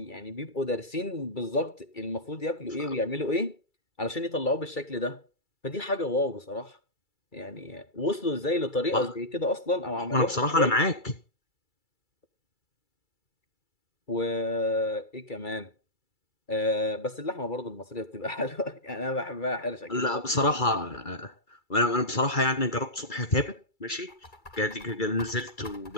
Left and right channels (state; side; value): late; right; 2.3 ms